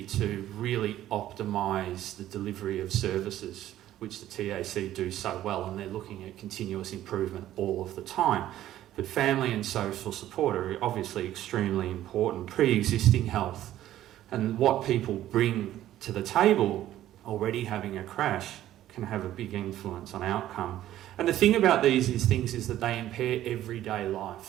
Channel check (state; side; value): quieter; left; 13.1 dB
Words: to really optimise the delivery of services, which the TAC do so well, and they're looking at continuous improvement all of the time. But family and social support are obviously extremely important. Pre-existing health and what people bring to the table, already having a crash, can have a big influence on outcome. And the thing about these things is that they impair everyday